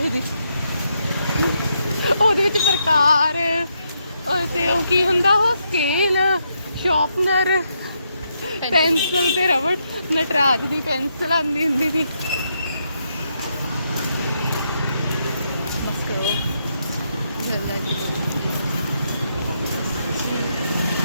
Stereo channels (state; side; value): inverted; both; correlation -0.79